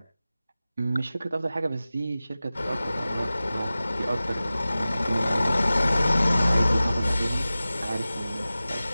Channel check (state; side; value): inverted; both; correlation -0.96